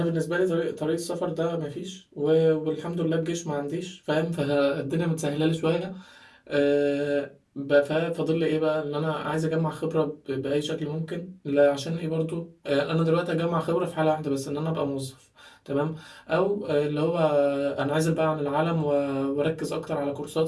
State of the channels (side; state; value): both; identical; correlation 1.00